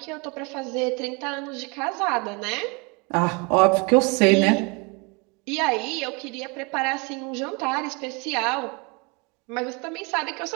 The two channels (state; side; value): quieter; left; 30.3 dB